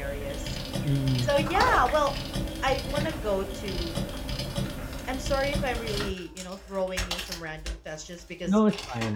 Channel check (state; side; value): identical; both; correlation 1.00